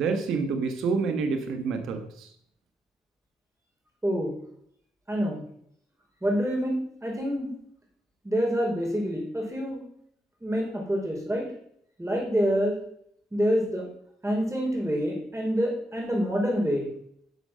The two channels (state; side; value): normal; both; correlation 0.84